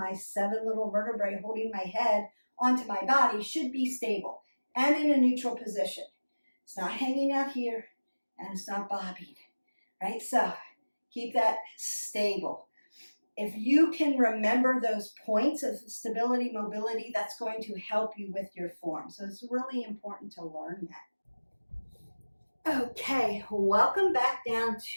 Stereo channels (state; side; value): inverted; both; correlation -1.00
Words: 7 little vertebrae holding my head onto my body should be stable and in a neutral position. It's not hanging out here and it's not bobbing, right? So keep that stable. If you can remember those points of stability, mobility, that's going to help you with your form. So it's really important to learn that. Okay, welcome back down